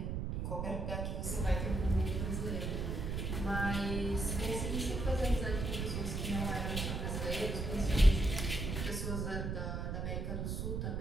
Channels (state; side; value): noise; right; rumble, 2 dB below the sound